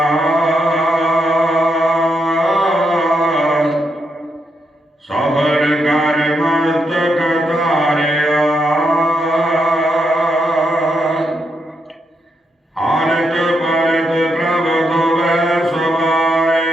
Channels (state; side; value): normal; both; correlation 0.81